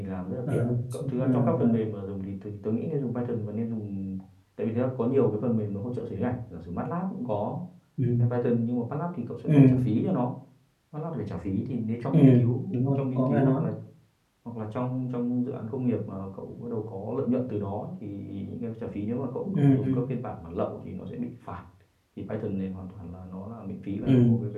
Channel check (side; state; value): both; identical; correlation 1.00